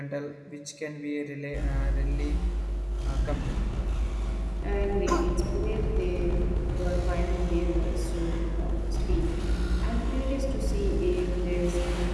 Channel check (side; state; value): both; identical; correlation 1.00